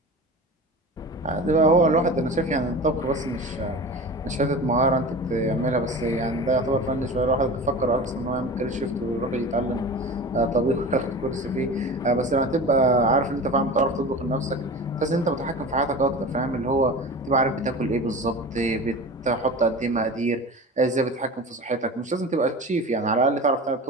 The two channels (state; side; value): normal; both; correlation 0.33